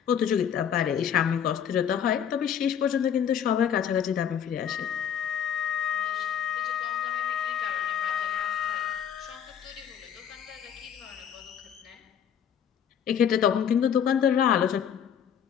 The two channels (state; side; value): quieter; right; 8.6 dB